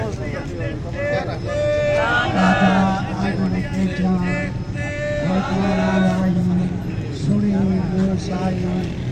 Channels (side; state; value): both; identical; correlation 1.00